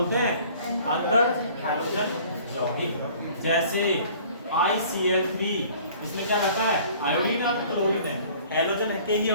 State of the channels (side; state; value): both; inverted; correlation -0.51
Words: हैं? अंतर हैलोजन यौगिक। जैसे ICl3, इसमें क्या रहता है? आयोडीन और क्लोरीन है, हैलोजन के ही